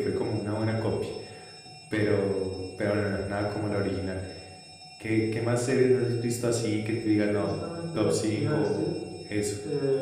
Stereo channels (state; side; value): identical; both; correlation 1.00